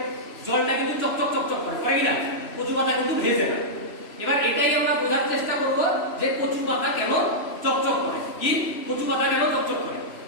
জলটা কিন্তু চকচক চকচক করে, হয় কিনা? কচু পাতা কিন্তু ভেজে না। এবার এটাই আমরা বোঝার চেষ্টা করব যে কচু পাতা কেন চকচক করে। কি? কচু পাতা কেন চকচক করে?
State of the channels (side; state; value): right; late; 3.0 ms